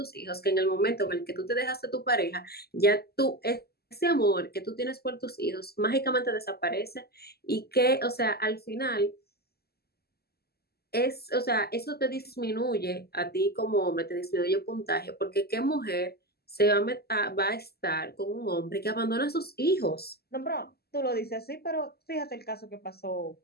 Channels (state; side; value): late; right; 0.46 ms